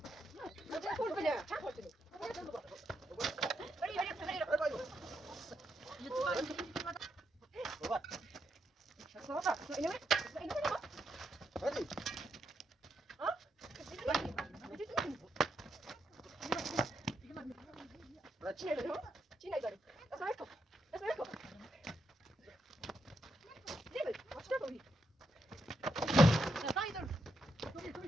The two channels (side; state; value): both; normal; correlation 0.82